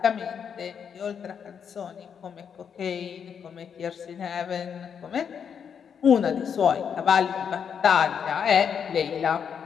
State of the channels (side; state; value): right; quieter; 7.3 dB